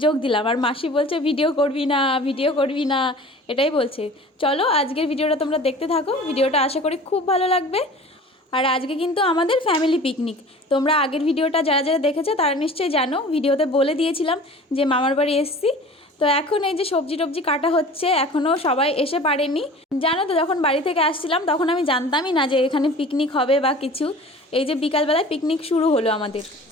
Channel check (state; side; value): normal; both; correlation 0.42